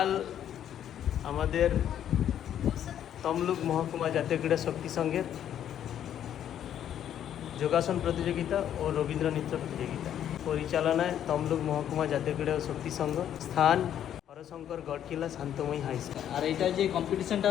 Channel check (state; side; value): quieter; right; 10.2 dB